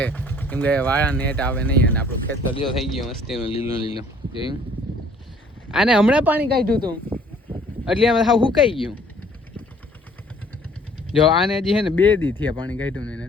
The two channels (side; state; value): both; normal; correlation 0.57